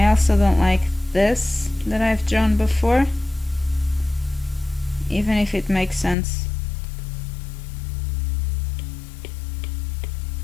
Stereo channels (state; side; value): drops out; right; at 6.2 s